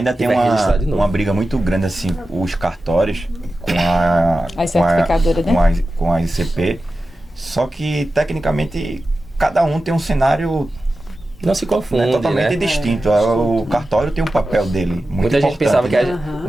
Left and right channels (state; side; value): normal; both; correlation 0.93